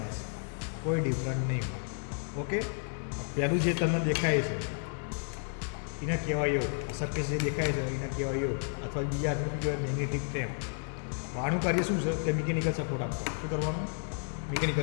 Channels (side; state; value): right; silent; 57 dB below the other